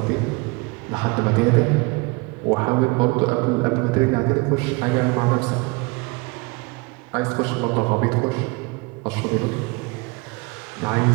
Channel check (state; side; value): quieter; left; 27.0 dB